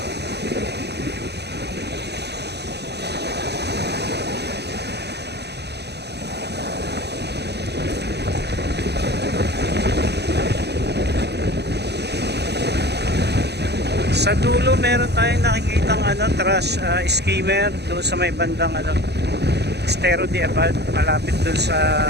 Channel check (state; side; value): late; left; 0.49 ms